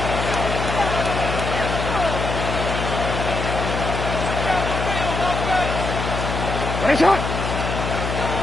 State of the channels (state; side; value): noise; left; hum, 3 dB below the sound